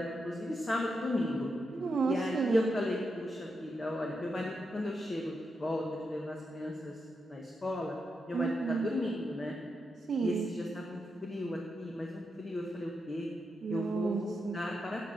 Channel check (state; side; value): normal; both; correlation 0.85